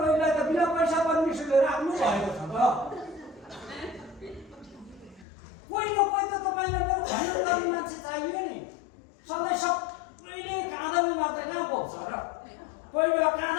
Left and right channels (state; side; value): drops out; right; at 5.2 s